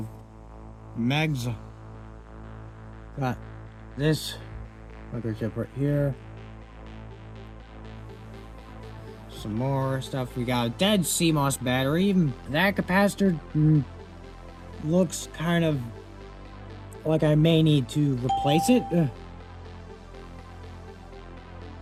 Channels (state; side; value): identical; both; correlation 1.00